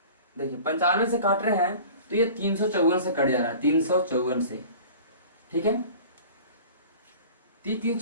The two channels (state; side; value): inverted; both; correlation -0.42